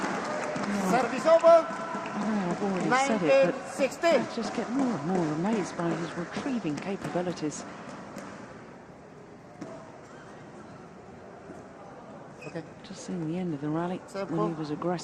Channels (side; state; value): both; identical; correlation 1.00